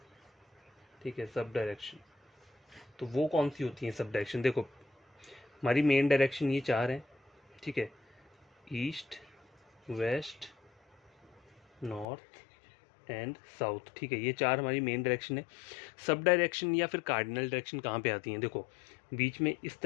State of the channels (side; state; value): right; drops out; at 12.1 s